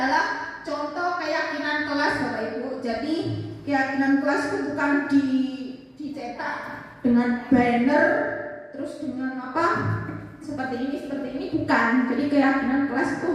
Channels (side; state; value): both; identical; correlation 1.00